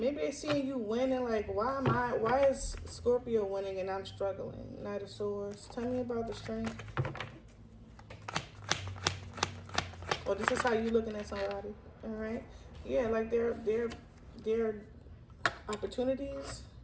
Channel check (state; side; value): identical; both; correlation 1.00